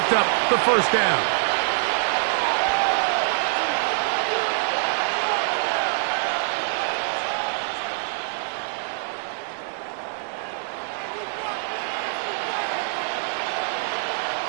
up the 1st down.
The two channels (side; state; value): left; silent; 57 dB below the other